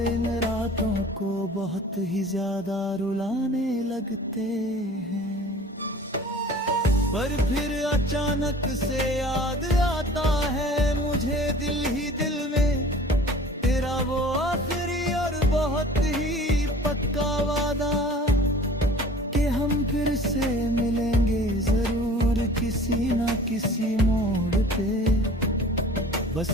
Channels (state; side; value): normal; both; correlation 0.45